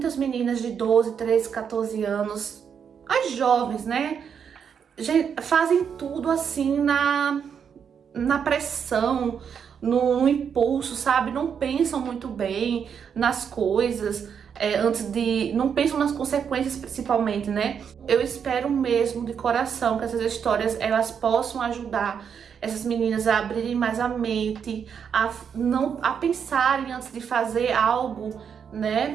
meninas de 12, 13, 14 anos, as jovens, né? Fazem tudo assim na pressão, no impulso, sabe? Não pensam muito bem nas coisas, não pensam nas consequências principalmente, né? Eu espero mesmo de coração que essas histórias elas possam ajudar essas meninas a abrirem mais a mente, a pensarem antes de fazer algo,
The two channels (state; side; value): quieter; left; 7.3 dB